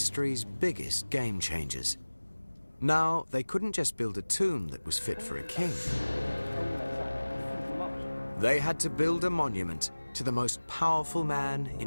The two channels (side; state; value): both; inverted; correlation -1.00